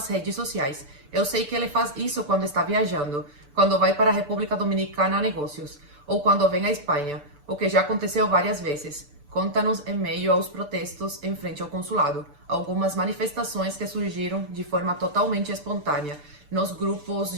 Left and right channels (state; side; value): late; left; 6.9 ms